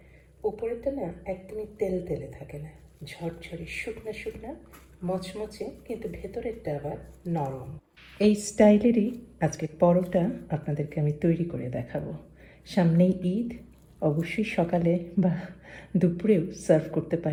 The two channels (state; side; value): identical; both; correlation 1.00